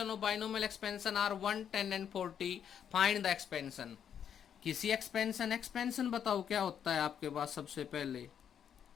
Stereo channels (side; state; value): right; quieter; 8.6 dB